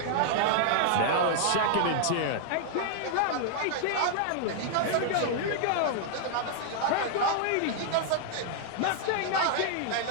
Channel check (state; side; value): different; both; correlation -0.01